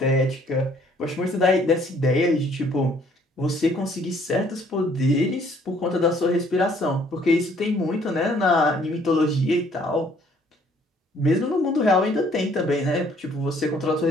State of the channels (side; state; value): both; normal; correlation 0.61